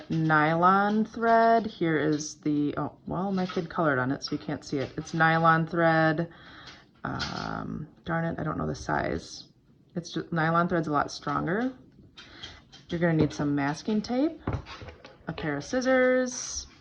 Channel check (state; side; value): identical; both; correlation 1.00